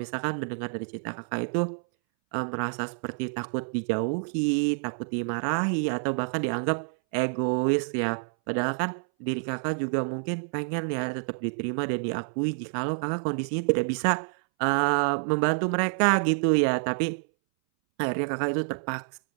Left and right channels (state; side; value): silent; left; 60 dB below the other